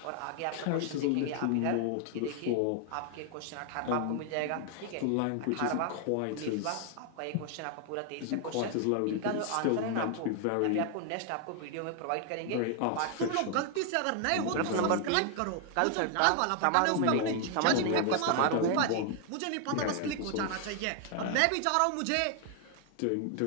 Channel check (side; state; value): both; different; correlation 0.00